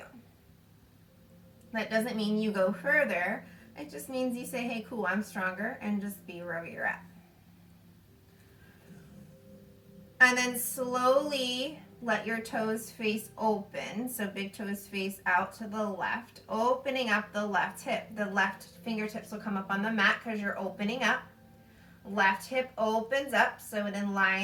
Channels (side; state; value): both; identical; correlation 1.00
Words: That doesn't mean you go further. It just means you say, hey, cool, I'm stronger, and just be wherever you're at. And then slowly let your toes face open. So big toes face out to the left, opening up the left hip. The left fingertips will come up on the mat because you're opening up. Left hip opens up so it